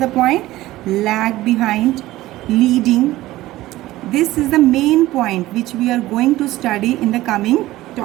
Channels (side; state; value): left; quieter; 16.6 dB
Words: point? Lag behind, leading. This is the main point which we are going to study in the coming